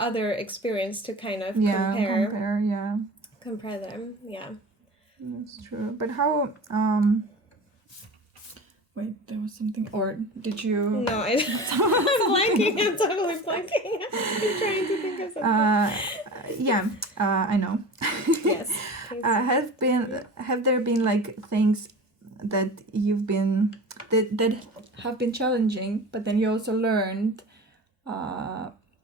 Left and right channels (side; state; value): both; normal; correlation 0.35